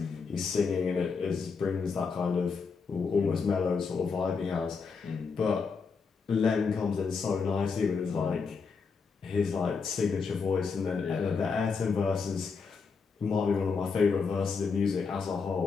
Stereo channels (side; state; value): right; quieter; 5.2 dB